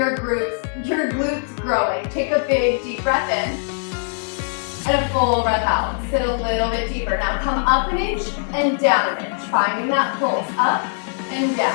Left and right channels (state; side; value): silent; right; 63 dB below the other